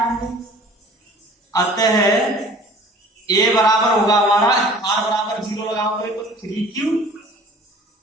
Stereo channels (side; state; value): both; normal; correlation 0.48